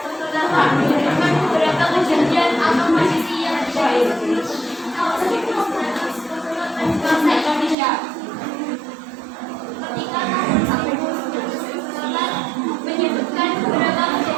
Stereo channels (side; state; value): left; drops out; at 7.8 s